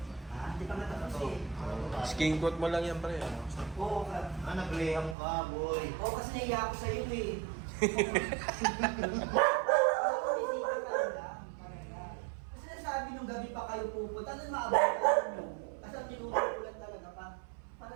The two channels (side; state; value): left; drops out; at 5.2 s